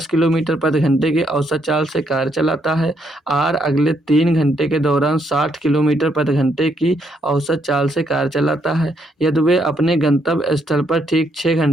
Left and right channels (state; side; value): normal; both; correlation 0.74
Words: किलोमीटर प्रति घंटे की औसत चाल से कार चलाता है। R अगले 3 घंटे के दौरान 60 किलोमीटर प्रति घंटे की औसत चाल से कार चलाता है। यदि वे अपने गंतव्य स्थल पर ठीक 6